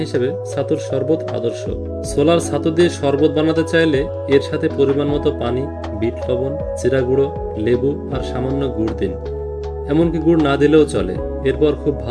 হিসেবে ছাতুর শরবত আদর্শ। সোলার ছাতু দিয়ে শরবত বানাতে চাইলে এর সাথে পরিমাণ মতো পানি, বিট লবণ, জিরা গুঁড়ো, লেবু আর সামান্য গুড় দিন। এমনকি গুড় না দিলেও চলে। এরপর খুব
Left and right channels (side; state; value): both; identical; correlation 1.00